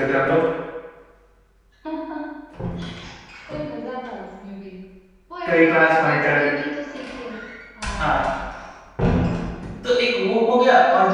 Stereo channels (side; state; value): both; identical; correlation 1.00